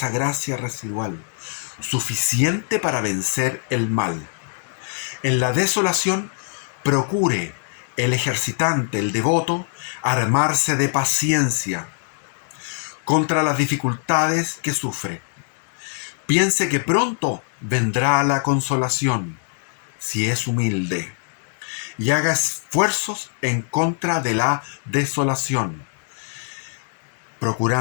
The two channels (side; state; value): right; silent; digital silence